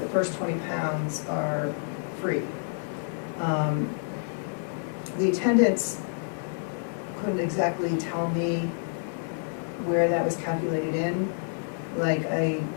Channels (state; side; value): silent; right; digital silence